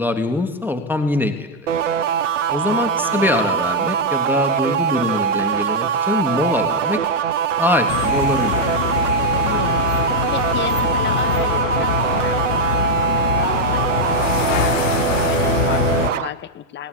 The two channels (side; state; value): both; normal; correlation 0.01